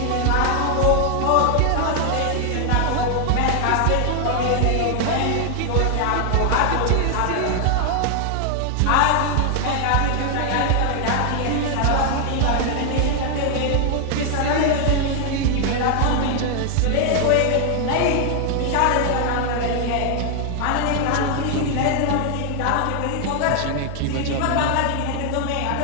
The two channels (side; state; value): both; different; correlation 0.00